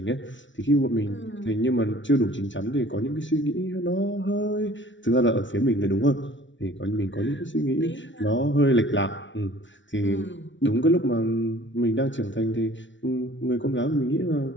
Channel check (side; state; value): right; late; 0.55 ms